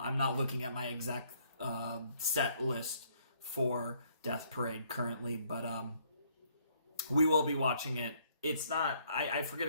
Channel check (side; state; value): both; inverted; correlation -0.66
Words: not looking at my exact set list for Death Parade currently, but we will be watching it. It's not, I forget